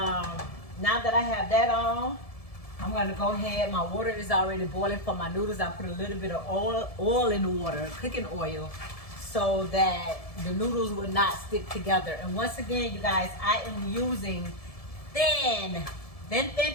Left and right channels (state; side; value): late; right; 1.7 ms